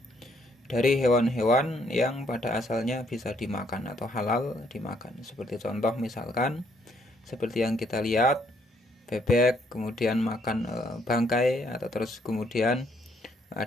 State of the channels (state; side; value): normal; both; correlation 0.69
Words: Dari hewan-hewan yang pada asalnya bisa dimakan atau halal dimakan. Seperti contoh misalkan seperti yang kita lihat, bebek kemudian makan bangkai, atau terus kemudian